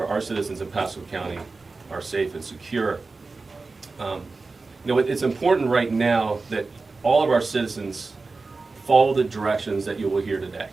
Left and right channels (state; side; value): quieter; left; 3.9 dB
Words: our citizens in Pasco County are safe and secure. It's important right now that all of our citizens follow the directions that you will hear today.